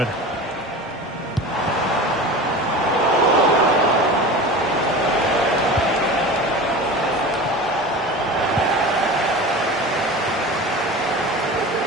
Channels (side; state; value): both; normal; correlation 0.33